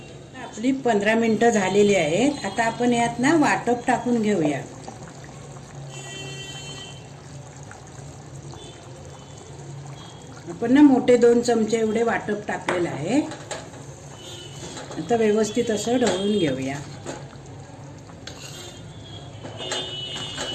आपली 15 मिनिटं झालेली आहेत. आता आपण यात ना वाटप टाकून घेऊया. आपण ना मोठे 2 चमचे एवढे वाटप टाकलेलं आहे. आता व्यवस्थित असं ढवळून घेऊया.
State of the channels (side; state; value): both; identical; correlation 1.00